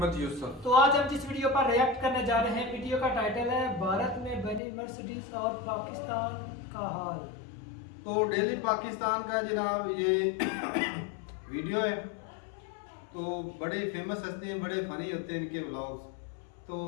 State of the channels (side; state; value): right; drops out; at 4.6 s